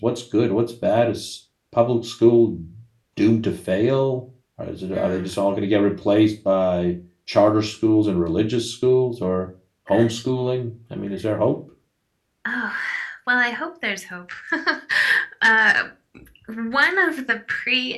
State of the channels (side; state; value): both; identical; correlation 1.00